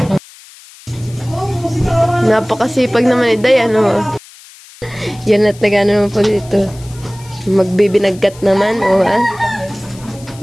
Napakasipag naman ni Day, ano? Yan at nag-ano naman po dito. Magbibinagkat naman, ha?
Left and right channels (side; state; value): left; noise; hiss, 22 dB below the sound